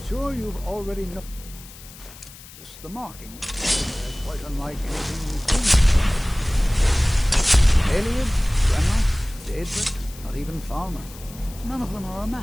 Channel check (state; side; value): noise; left; hiss, 18 dB below the sound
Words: sure you've already noticed the marking. They're quite unlike anything we've seen. Alias, Grandma, Daedric, not even Falmer. None of them are a